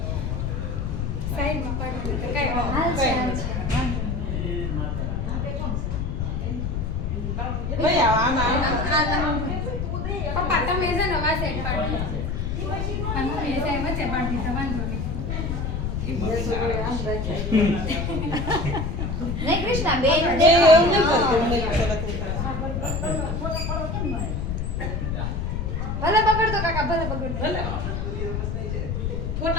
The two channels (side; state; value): left; noise; rumble, 2 dB below the sound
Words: સાઈડમાં પાડો તો કઈ હાલ છે ભાઈ આમાં પપ્પા તમે છે ને વા સાઈડ પાડો અને હું એ સાઈડ વચ્ચે પાડી તો વાંધો નહીં નહીં કૃષ્ણા બેન એવું નહીં કરતું ભલે બગડતો કાકા ભલે બગડતો ભલે